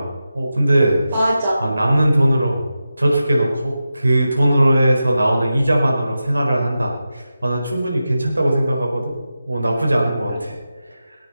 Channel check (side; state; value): both; inverted; correlation -0.91